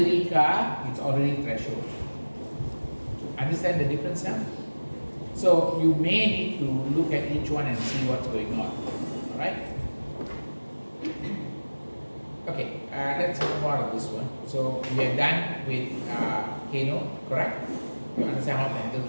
car, it's already threshold. Understand the difference now? So you may need to look at each one and see what's going on. Alright? Okay, let's move on to this one. So we are done with Kano, correct? You understand how to handle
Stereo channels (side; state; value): both; inverted; correlation -1.00